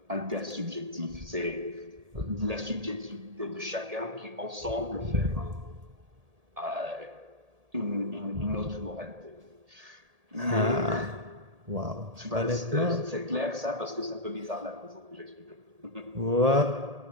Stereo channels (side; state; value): left; late; 1.8 ms